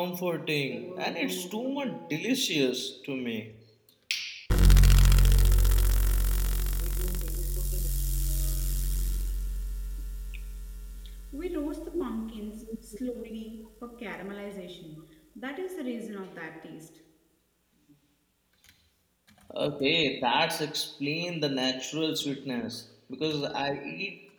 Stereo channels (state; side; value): identical; both; correlation 1.00